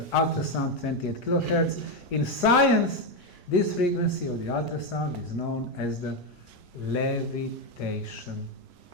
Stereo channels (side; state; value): both; normal; correlation 0.07